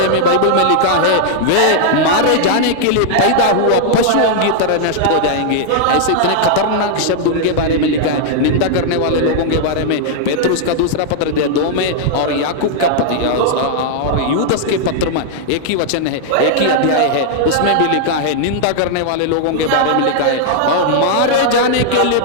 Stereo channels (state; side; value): different; both; correlation -0.01